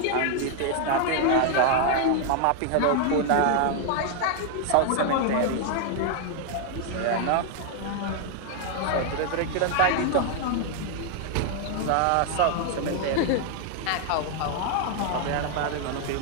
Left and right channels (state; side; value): different; both; correlation 0.00